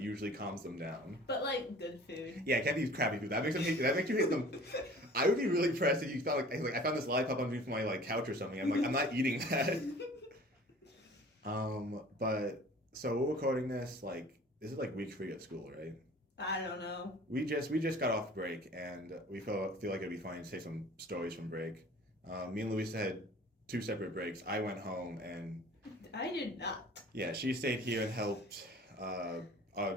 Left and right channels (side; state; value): both; normal; correlation 0.47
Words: calms them down. But like good food. Yeah, it can't be crappy food. That makes you hate them. I would be really impressed if you felt like I found this lollipop underneath my like couch or something. I'm like, I'm not eating that. But so we're recording this this is like week 3 at school, right? I don't know. We just got off break, and we feel like it'd be fine to say some stories from break. Me and Louisa had 2 separate breaks. I went home and I did not. Yeah, she stayed here and helped.